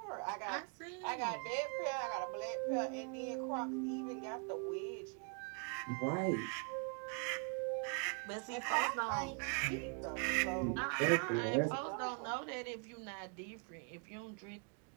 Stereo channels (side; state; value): left; quieter; 39.1 dB